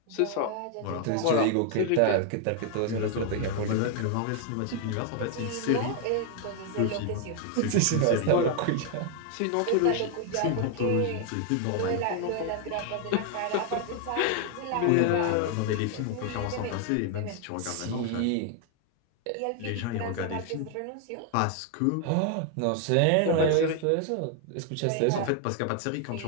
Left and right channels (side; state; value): both; different; correlation 0.00